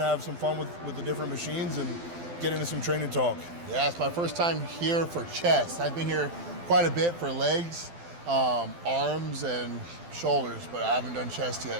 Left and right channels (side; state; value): left; late; 12 ms